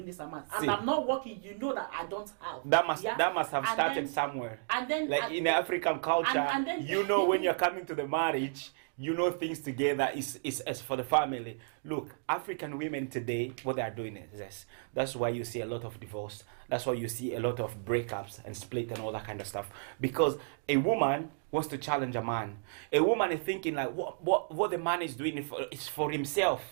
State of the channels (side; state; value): left; silent; digital silence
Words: this amount, and I'm not working. You know that I don't have. That must have started somewhere. And then, like in the African culture, and then, you know, when you're coming to the marriage, you know things together is as for the family. Look, African women today, what they are doing is this. That's why you see a lot of divorce. That's why you see a lot of breakups and split and all that kind of stuff. Because a woman wants to challenge a man. A woman is thinking like, what the man is doing is for